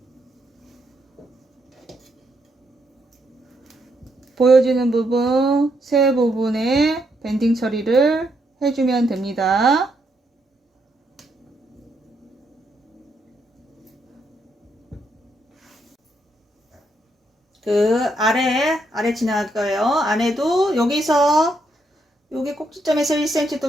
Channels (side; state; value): both; normal; correlation 0.77